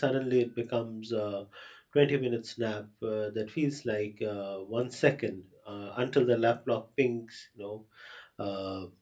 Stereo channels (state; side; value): identical; both; correlation 1.00